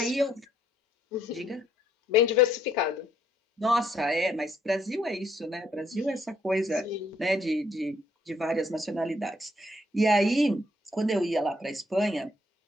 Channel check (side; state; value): both; normal; correlation 0.69